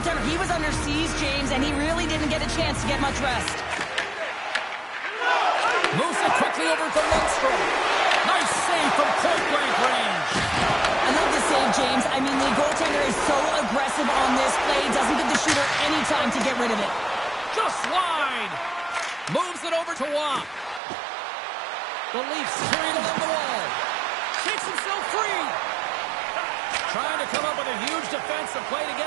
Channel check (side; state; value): left; drops out; at 20.8 s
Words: he was under siege, James, and he really didn't get a chance to get much rest. Moves it quickly over to Lundstrom. Nice save from point-blank range. I love the save, James. I mean, the goaltender is so aggressive on this play. Doesn't give the shooter any time to get rid of it. Just wide. Moves it over to Waugh. The Leafs carry it along the wall. Takes himself free. Trying to come up with a huge defensive play to